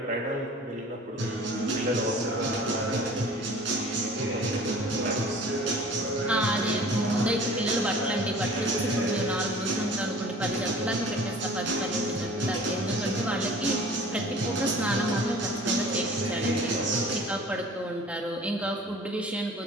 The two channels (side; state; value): both; normal; correlation 0.46